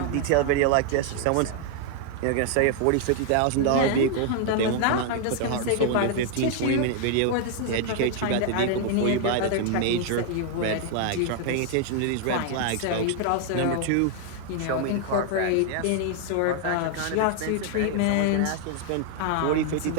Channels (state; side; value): different; both; correlation 0.00